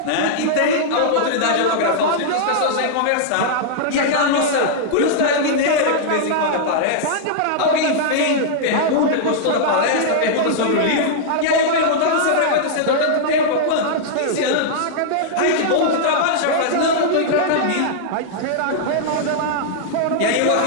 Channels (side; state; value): both; different; correlation -0.02